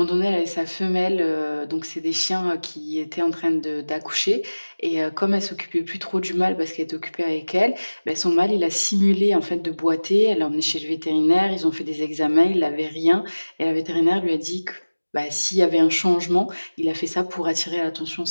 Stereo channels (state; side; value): inverted; both; correlation -1.00